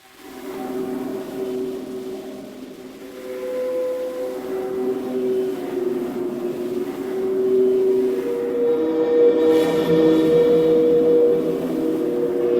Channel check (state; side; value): identical; both; correlation 1.00